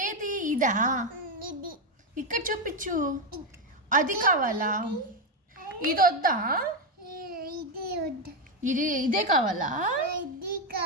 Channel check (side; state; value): both; normal; correlation 0.07